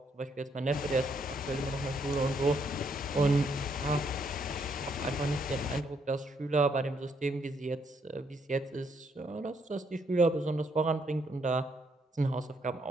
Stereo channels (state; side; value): normal; both; correlation 0.73